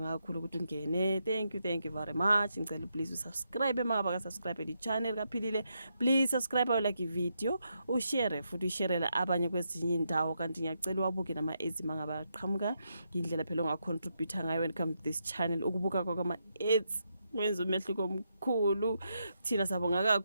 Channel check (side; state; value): both; inverted; correlation -0.82